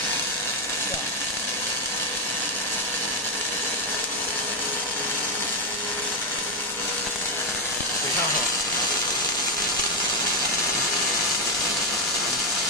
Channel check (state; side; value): normal; both; correlation 0.05